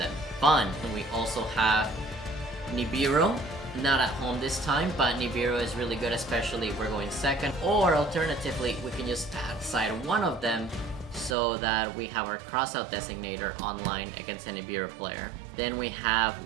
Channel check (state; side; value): drops out; left; at 11.4 s